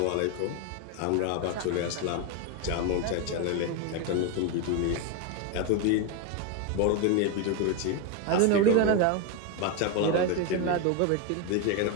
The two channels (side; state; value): both; different; correlation 0.02